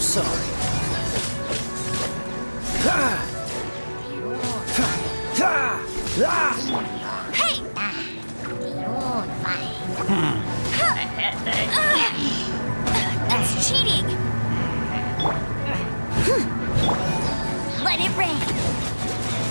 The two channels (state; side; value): inverted; both; correlation -1.00